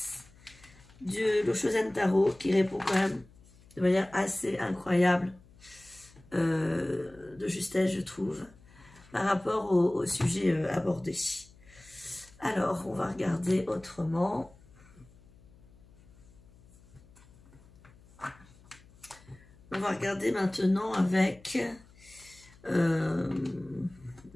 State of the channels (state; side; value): noise; left; hum, 25 dB below the sound